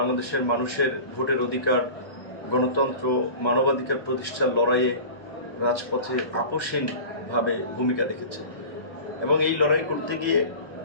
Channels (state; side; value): late; right; 1.0 ms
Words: মানুষের ভোটের অধিকার, গণতন্ত্র, মানবাধিকার প্রতিষ্ঠার লড়াইয়ে রাজপথে আপোষহীনভাবে ভূমিকা রেখেছে এবং এই লড়াই করতে গিয়ে